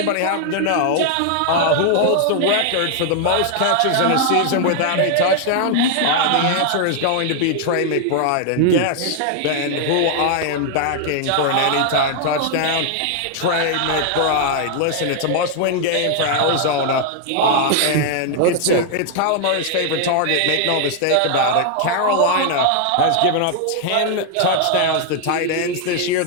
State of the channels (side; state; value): both; different; correlation 0.00